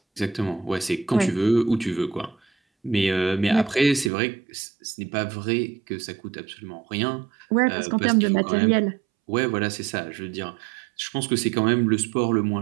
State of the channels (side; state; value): left; drops out; at 4.1 s